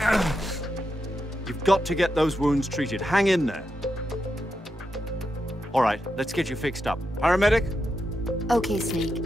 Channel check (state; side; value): normal; both; correlation 0.86